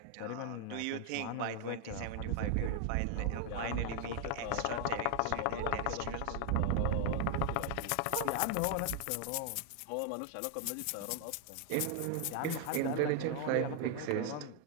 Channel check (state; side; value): different; both; correlation 0.00